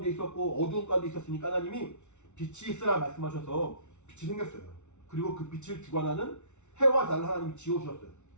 있었고 어두운 가운데 있었으니까 하나님이 빛이 있으라 말씀하셔서 빛이 생겼어요. 그리고 그 빛을 주관하는 해와 달을 하나님이 지어주셨어요.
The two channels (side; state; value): right; late; 0.83 ms